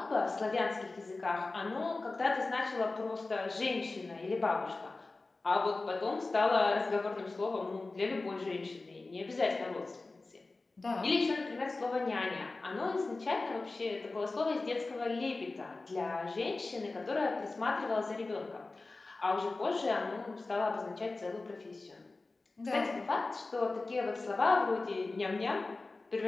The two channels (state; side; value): quieter; right; 3.4 dB